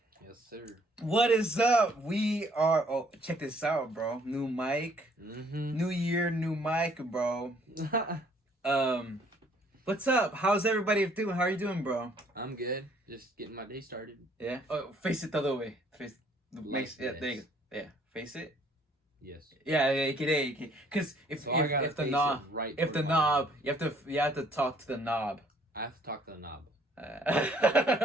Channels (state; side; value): normal; both; correlation 0.62